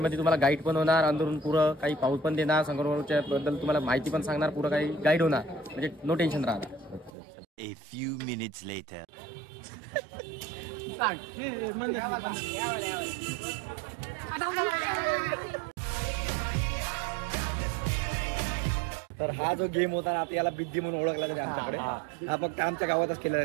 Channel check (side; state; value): left; drops out; at 7.1 s